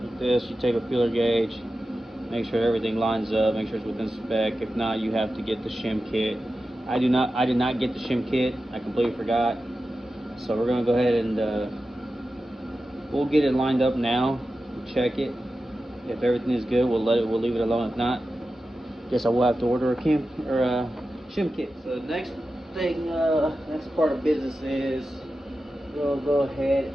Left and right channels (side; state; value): both; normal; correlation 0.92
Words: this, you take a feeler gauge, make sure everything lines up, make sure it's within spec. If not, you have to get the shim kit. I did not get the shim kit. I completely forgot. So we're gonna go ahead and we'll get it lined up now. Check it. If everything is good, we'll leave it alone. If not, guess I will have to order a shim kit. So the next thing, next part of business is we'll go ahead